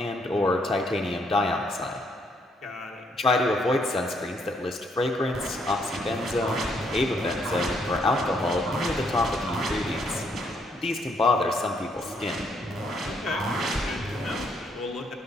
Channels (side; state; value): both; normal; correlation 0.71